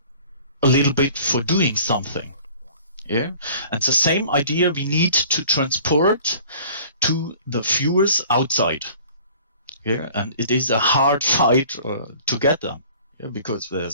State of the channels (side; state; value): both; inverted; correlation -0.49